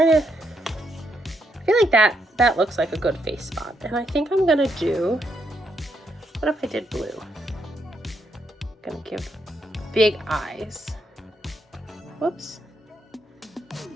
like that looks like a good face spot. And I think I'm gonna do, what if I did blue? I'm gonna give big eyes. Whoops.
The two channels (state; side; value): normal; both; correlation 0.78